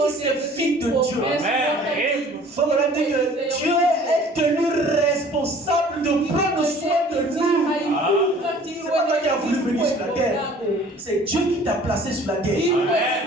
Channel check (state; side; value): normal; both; correlation 0.50